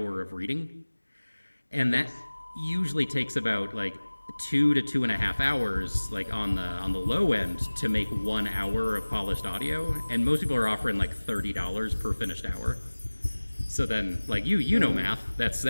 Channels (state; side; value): inverted; both; correlation -1.00